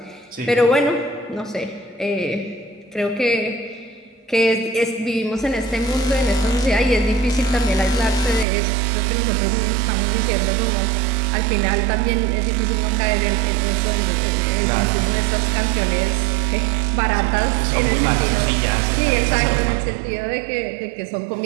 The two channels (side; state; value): left; drops out; at 8.5 s